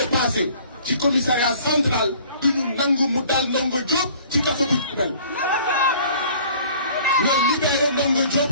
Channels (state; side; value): inverted; both; correlation -0.52